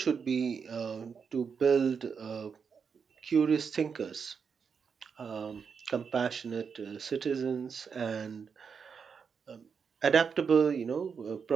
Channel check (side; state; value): left; quieter; 6.2 dB